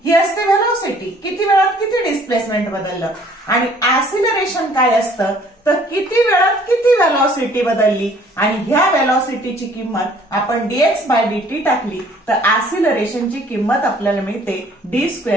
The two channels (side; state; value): both; normal; correlation 0.57